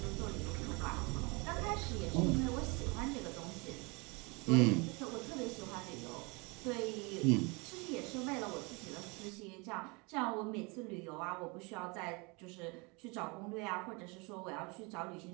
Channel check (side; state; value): left; quieter; 28.7 dB